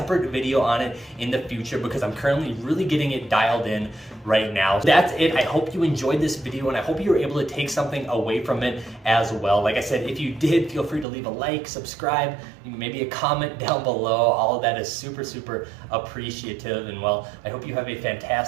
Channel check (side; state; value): left; drops out; at 11.1 s